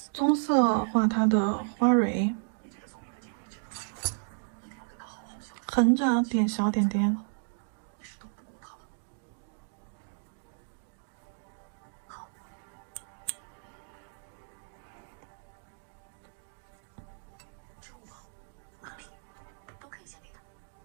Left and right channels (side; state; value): left; silent; 56 dB below the other